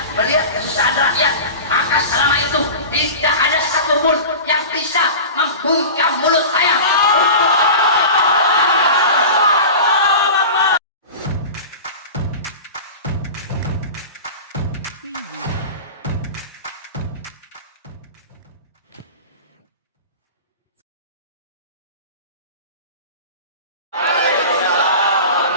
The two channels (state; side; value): inverted; both; correlation -0.32